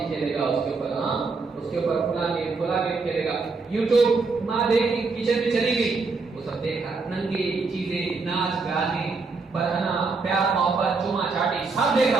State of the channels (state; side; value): quieter; left; 4.2 dB